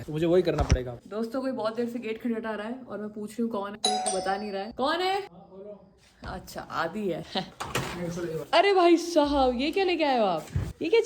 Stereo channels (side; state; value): both; identical; correlation 1.00